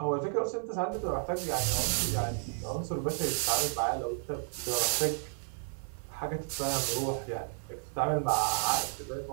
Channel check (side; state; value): left; silent; 56 dB below the other